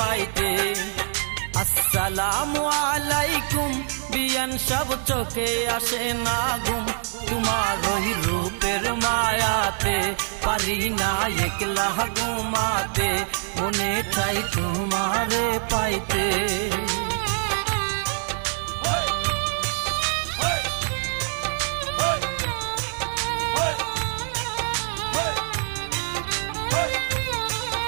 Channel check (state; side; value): silent; left; digital silence